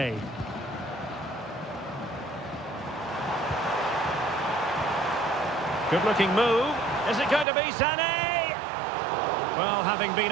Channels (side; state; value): left; drops out; at 7.5 s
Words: Good-looking move. Is it going to be Sané? Well, having been